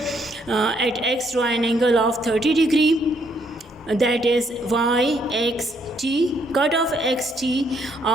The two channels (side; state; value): both; normal; correlation 0.70